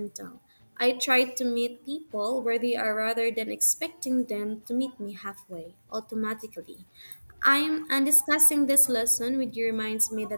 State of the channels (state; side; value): inverted; both; correlation -1.00